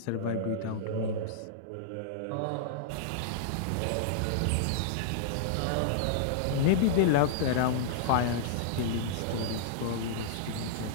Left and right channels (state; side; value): different; both; correlation -0.02